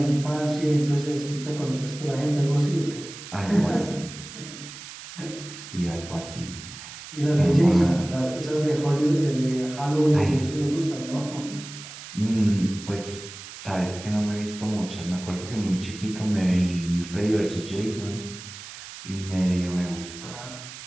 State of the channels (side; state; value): right; noise; hiss, 13 dB below the sound